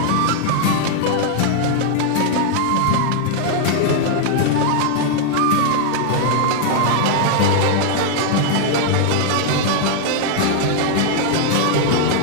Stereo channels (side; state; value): both; different; correlation 0.00